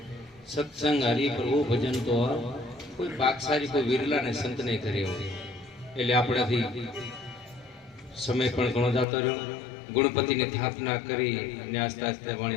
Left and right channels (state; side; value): drops out; right; at 9.1 s